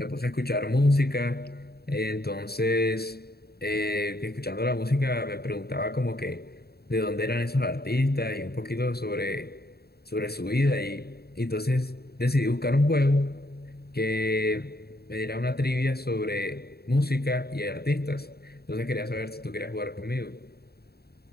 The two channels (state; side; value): late; right; 0.46 ms